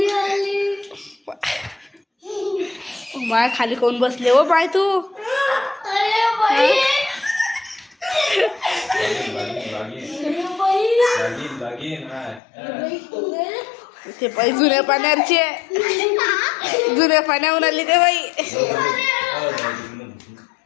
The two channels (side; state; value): right; drops out; at 12.4 s